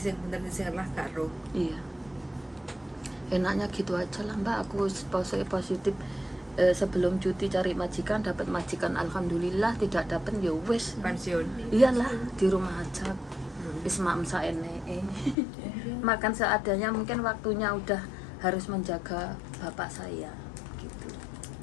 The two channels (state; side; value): drops out; right; at 15.4 s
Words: bener dising lah gak roh. Iya. Enaknya gitu aja lah mbak, aku positif. Sebelum cuti cari majikan, dapat majikan alhamdulillah, tidak dapat ya wes Pensiun. iyalah di rumah aja wis mak saene makan seadanya, mungkin waktunya udah harus menjaga bapak saya gitu.